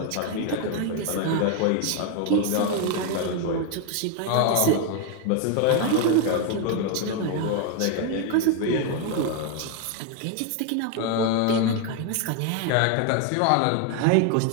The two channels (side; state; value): both; different; correlation 0.01